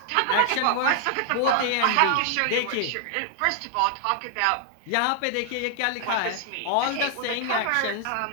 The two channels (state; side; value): different; both; correlation 0.00